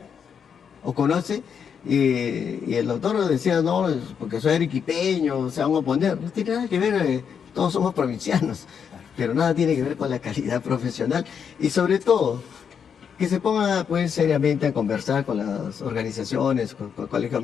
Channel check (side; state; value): right; quieter; 7.2 dB